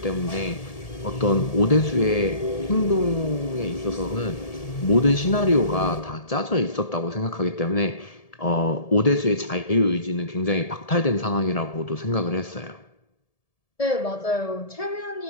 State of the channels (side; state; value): right; late; 1.7 ms